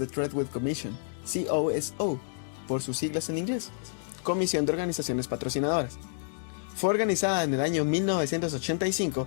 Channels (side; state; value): right; silent; digital silence